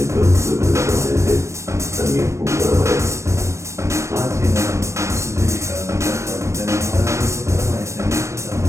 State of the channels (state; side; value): late; left; 0.14 ms